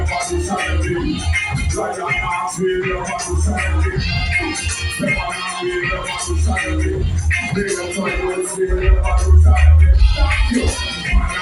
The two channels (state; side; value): identical; both; correlation 1.00